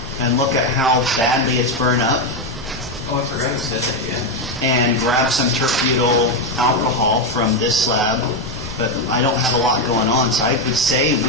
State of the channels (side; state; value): both; normal; correlation 0.07